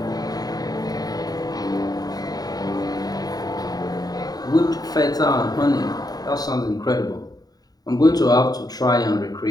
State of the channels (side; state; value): right; late; 0.18 ms